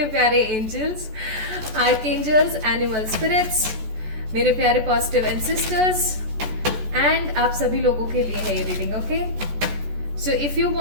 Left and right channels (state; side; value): late; left; 14 ms